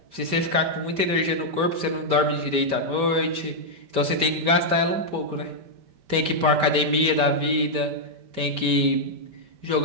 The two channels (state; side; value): late; left; 5.1 ms